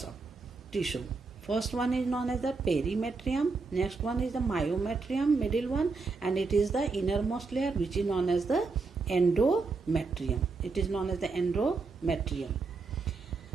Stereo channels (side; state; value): left; quieter; 4.2 dB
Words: of tissue. First one is known as the perimetrium, next one is the myometrium, middle one, and it is the innermost layer, which is known as the endometrium. It is known as the endometrium.